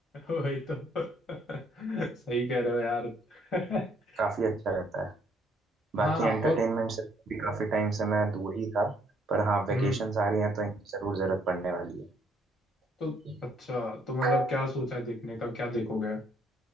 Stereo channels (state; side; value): normal; both; correlation 0.67